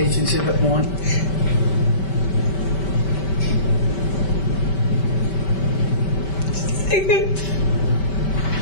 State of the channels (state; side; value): late; right; 5.2 ms